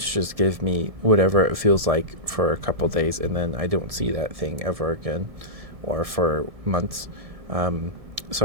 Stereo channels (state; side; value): late; left; 1.7 ms